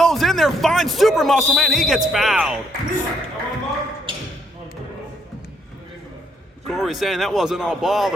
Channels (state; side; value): normal; both; correlation 0.71